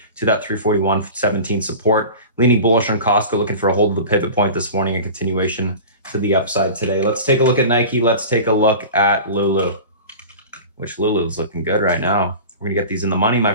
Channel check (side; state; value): both; inverted; correlation -0.35